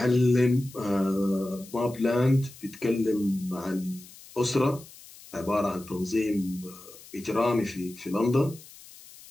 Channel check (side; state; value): left; noise; hiss, 20 dB below the sound